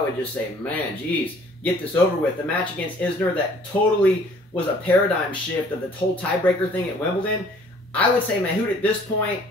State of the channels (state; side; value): normal; both; correlation 0.56